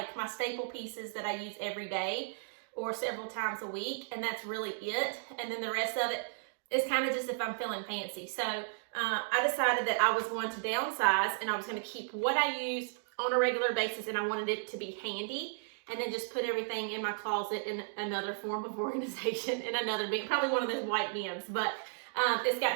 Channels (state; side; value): silent; left; digital silence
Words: my staple pieces that I use every day or several times a week, and that's really it. And then the rest of it is kind of just if I'm feeling fancy. So I decided that I was going to downsize and I was going to keep what I use on a regular basis, and I wanted it to be handy, and then just put everything in my closet in another form of organization, in another bin, probably one of those white bins. But it's